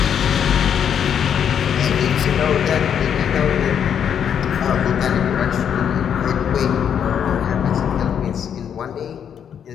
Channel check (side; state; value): right; quieter; 8.4 dB